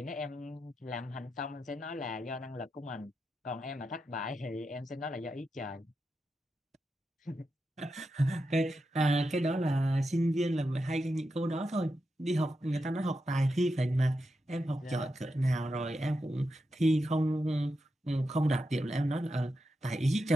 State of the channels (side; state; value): both; normal; correlation 0.87